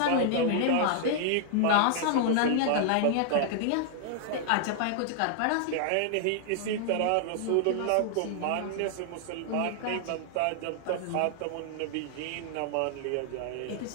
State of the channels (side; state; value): both; different; correlation -0.01